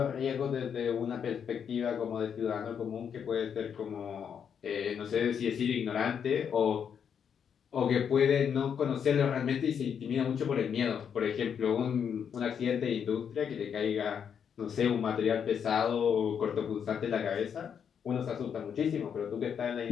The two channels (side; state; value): right; quieter; 7.6 dB